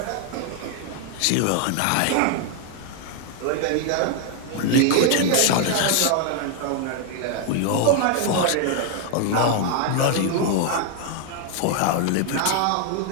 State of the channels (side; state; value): both; different; correlation 0.00